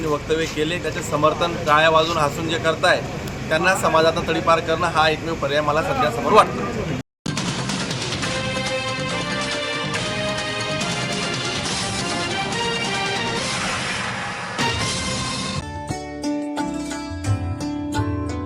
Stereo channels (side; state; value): both; identical; correlation 1.00